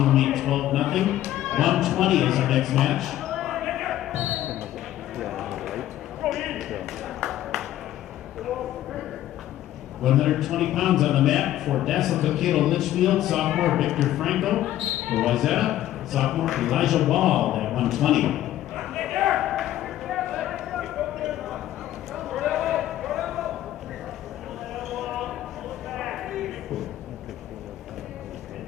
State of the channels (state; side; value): quieter; right; 13.3 dB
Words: meet 12-0. 120 is our next match. 120 pounds on the mat for Dassel-Cokato Litchfield, sophomore Victor Franco. For Wayzata, sophomore Elijah Wall at 120.